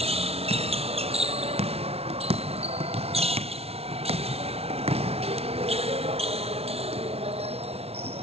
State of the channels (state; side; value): late; left; 0.30 ms